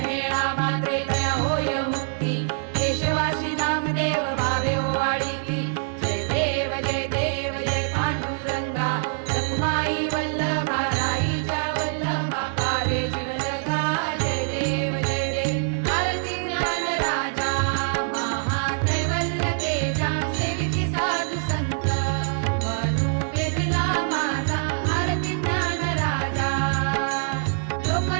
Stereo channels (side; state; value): left; silent; digital silence